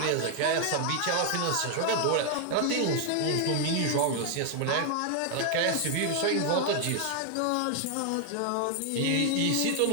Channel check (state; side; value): different; both; correlation 0.00